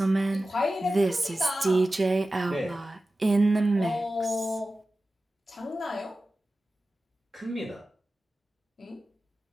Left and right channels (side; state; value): both; normal; correlation 0.95